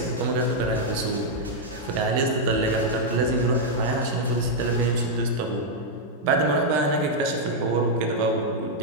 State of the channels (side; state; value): both; normal; correlation -0.03